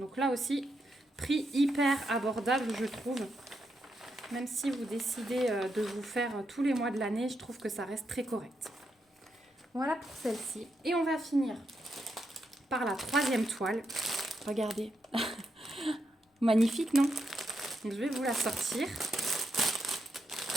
là aussi, prix hyper abordable, je trouve. Même si vous décidez de vous faire tous les mois de l'année, je trouve que ça reste très correct. Voilà pour celle-ci. Et on va finir par la troisième toile. Regardez. Magnifique, non? Donc, je vais vous la sortir.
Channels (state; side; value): normal; both; correlation 0.82